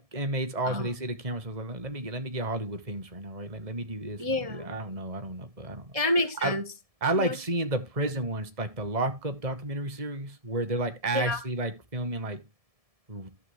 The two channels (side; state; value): left; late; 1.7 ms